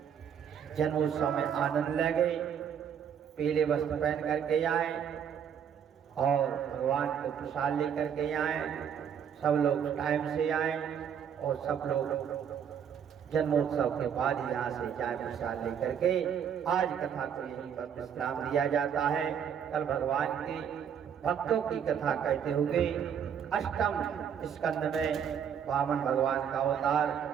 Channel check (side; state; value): left; quieter; 8.2 dB